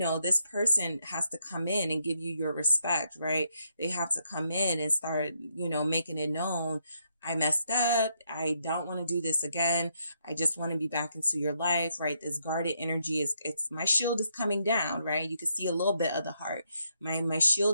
this person has to come in and give you your respect, right? They have to come in and start, you know, making it known. I messed up. I don't want to do this again. I just want to be back into your life, right? This guarded energy it's my shield is coming down, right? You can see a little bit of the heart. My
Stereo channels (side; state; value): both; inverted; correlation -0.77